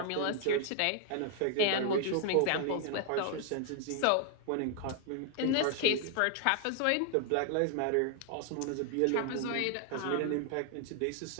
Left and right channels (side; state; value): both; different; correlation 0.00